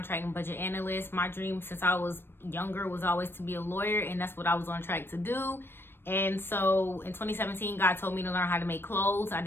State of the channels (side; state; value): right; late; 0.10 ms